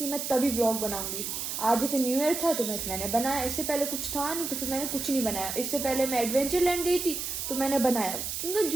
मैं तभी ब्लॉग बनाऊंगी। आज जैसे न्यू ईयर था तो मैंने बनाया, इससे पहले कुछ था नहीं तो फिर मैंने कुछ नहीं बनाया। इससे पहले मैं एडवेंचर लैंड गई थी तो मैंने बनाया, क्योंकि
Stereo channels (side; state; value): right; noise; hiss, 4 dB below the sound